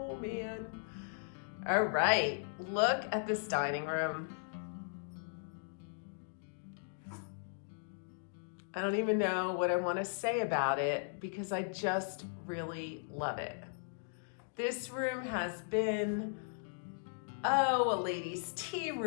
man. All right, look at this dining room. I don't even know what I want to say about it because I just really love it. This room has been, a ladies' tea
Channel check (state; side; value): silent; right; digital silence